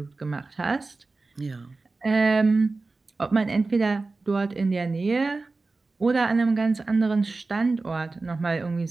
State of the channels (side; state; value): left; quieter; 3.6 dB